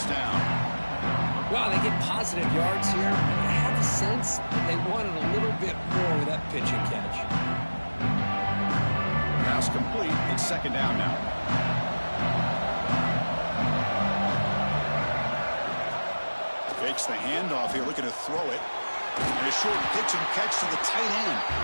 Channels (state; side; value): inverted; both; correlation -1.00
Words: down. Wow, they get positive yards here. I have the sense that they wanted a little bit more with that pitch and catch. Pass complete. It's second down now. Fakes the handoff here, looking to throw it. And a short pitch and catch to the tight end.